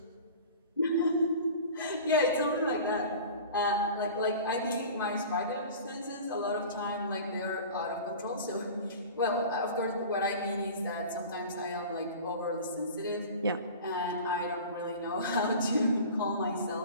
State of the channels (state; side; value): inverted; both; correlation -0.38